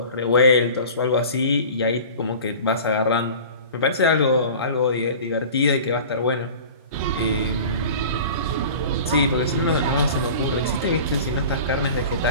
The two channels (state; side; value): inverted; both; correlation -0.39